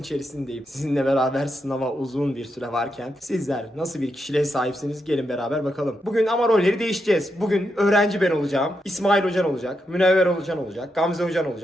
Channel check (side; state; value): both; normal; correlation 0.84